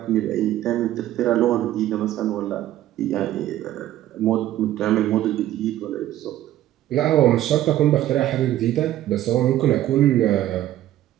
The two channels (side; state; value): left; quieter; 13.4 dB